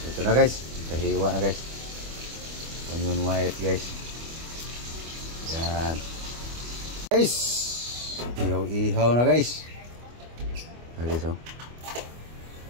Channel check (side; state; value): left; late; 25 ms